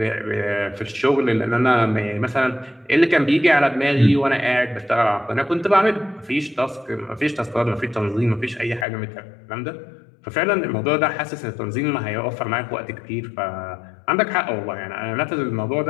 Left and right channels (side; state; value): right; drops out; at 8.8 s